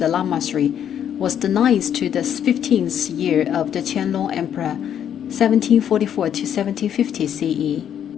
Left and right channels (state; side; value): quieter; right; 9.4 dB